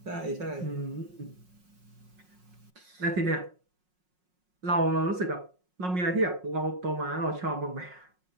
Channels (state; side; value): late; left; 5.5 ms